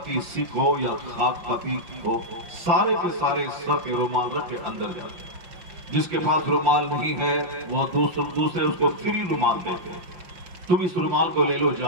سکھ ہو یا خاک پتی ہو، سارے کے سارے سر پہ رومال رکھ کے اندر جاتے ہیں۔ جس کے پاس رومال نہیں ہے وہ دوسرے اس کو فری رومال دیتے ہیں، تم اس رومال کو لے لو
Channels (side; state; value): left; late; 5.7 ms